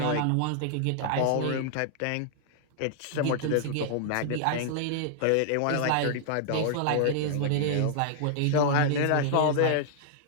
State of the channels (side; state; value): both; different; correlation -0.01